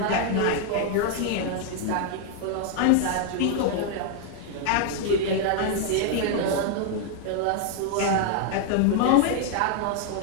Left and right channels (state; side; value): different; both; correlation 0.00